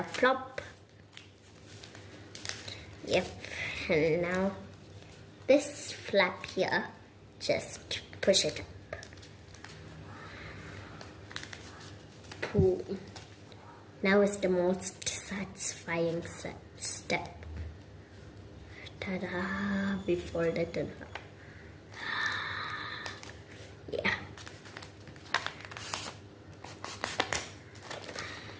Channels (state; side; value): identical; both; correlation 1.00